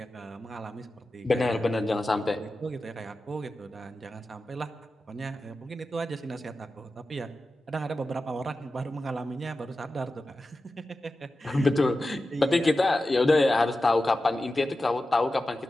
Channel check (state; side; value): normal; both; correlation 0.93